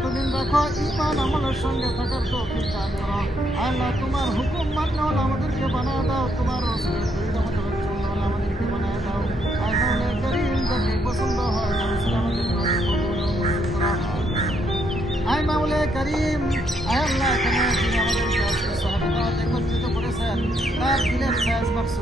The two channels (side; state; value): both; normal; correlation 0.74